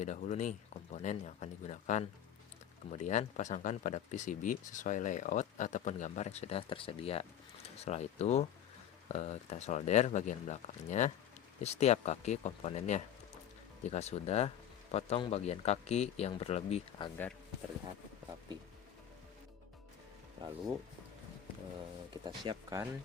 dahulu nih komponen yang akan digunakan. Kemudian pasangkan pada PCB sesuai layout ataupun gambar yang sudah tersedia. Setelah itu kita solder bagian belakangnya di setiap kaki komponennya. Jika sudah, potong bagian kaki yang berlebih agar terlihat rapi. Lalu kita siapkan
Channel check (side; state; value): right; quieter; 9.9 dB